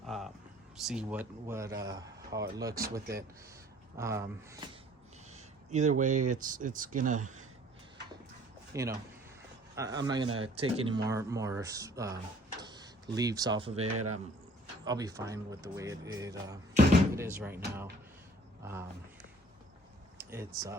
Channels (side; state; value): both; normal; correlation 0.55